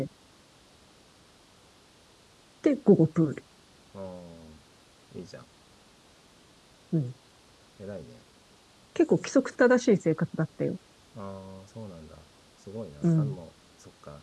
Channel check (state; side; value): identical; both; correlation 1.00